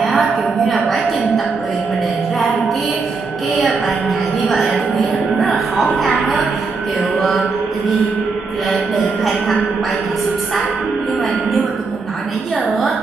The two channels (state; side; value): quieter; left; 4.4 dB